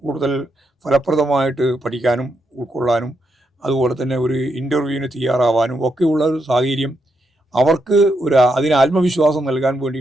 കൂടുതൽ ഫലപ്രദമായിട്ട് പഠിക്കാനും ഉൾക്കൊള്ളാനും അതുപോലെ തന്നെ ഒരു ഇൻ്റർവ്യൂവിന് തയ്യാറാവാനും ഒക്കെയുള്ള ഒരു സാഹചര്യം അവർക്ക് അതിന് ആത്മവിശ്വാസം നൽകാൻ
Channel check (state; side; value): normal; both; correlation 0.81